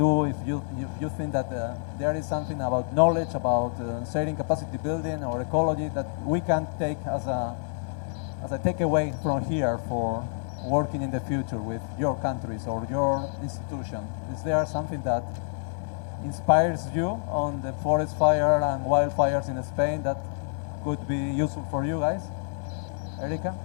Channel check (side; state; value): right; silent; digital silence